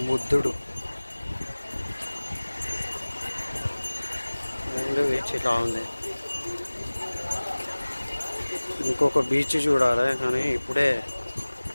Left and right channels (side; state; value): both; inverted; correlation -1.00